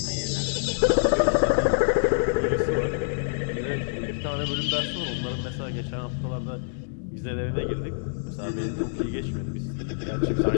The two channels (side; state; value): right; silent; digital silence